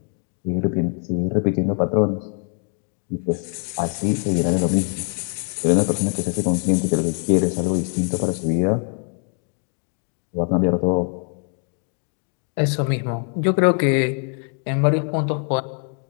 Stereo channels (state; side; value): quieter; right; 39.6 dB